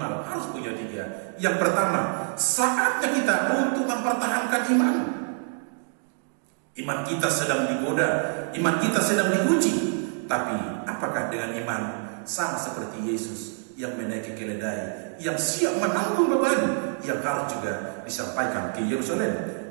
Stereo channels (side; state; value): left; silent; 61 dB below the other